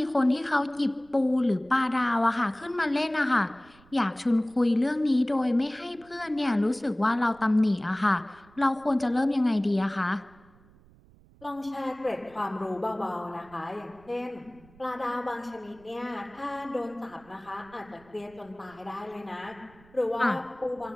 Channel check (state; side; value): noise; right; rumble, 27 dB below the sound